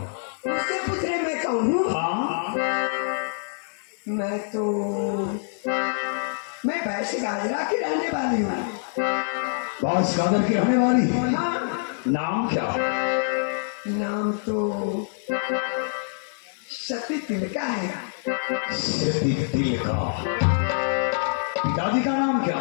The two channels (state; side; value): silent; right; digital silence